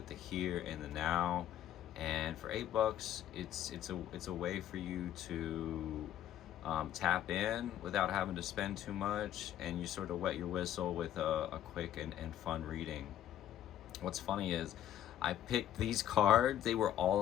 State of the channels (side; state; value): right; quieter; 11.4 dB